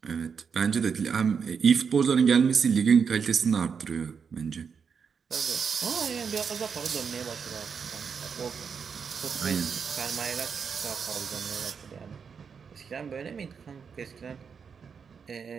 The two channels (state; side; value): quieter; left; 6.3 dB